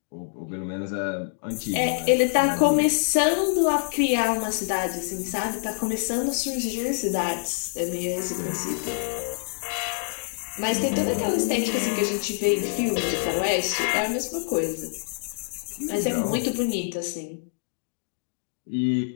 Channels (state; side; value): silent; right; digital silence